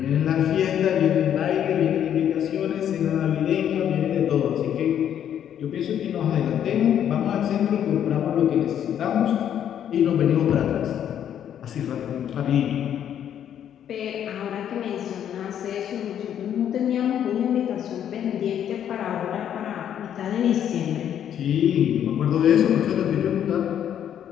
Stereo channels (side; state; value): right; quieter; 9.7 dB